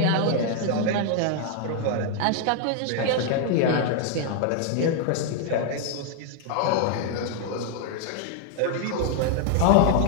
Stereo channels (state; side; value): different; both; correlation 0.00